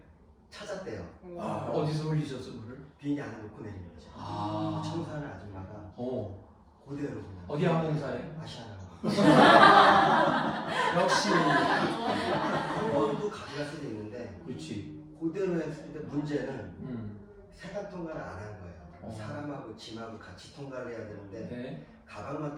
찾았대요. 어디서 흘리셨어 그를? 비행기 안에 놓고 내린 거죠. 아. 청소하는 아줌마가 오. 그대로 그냥. 어디 항공사에? 아시아나. 역시. 한 번도 가져갈 수도 있는데 그렇지. 그대로 했는데 문제는 세관 통과를 안 한 거예요. 어. 사람하고 짐하고 같이 통과를 해야 되는데 네. 가방만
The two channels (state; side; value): identical; both; correlation 1.00